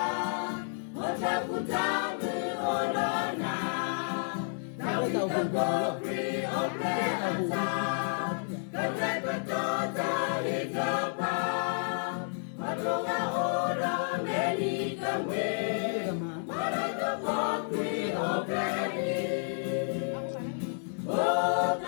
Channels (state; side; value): silent; right; digital silence